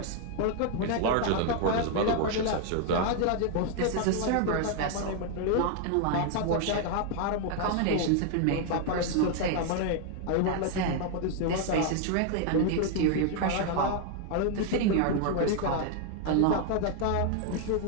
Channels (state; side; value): different; both; correlation 0.00